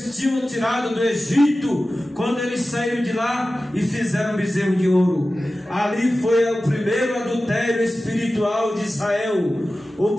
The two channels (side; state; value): both; normal; correlation 0.95